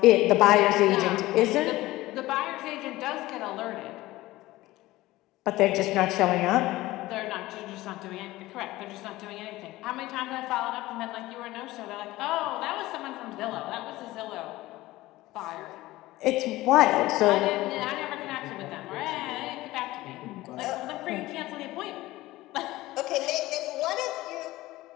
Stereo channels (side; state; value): right; quieter; 17.8 dB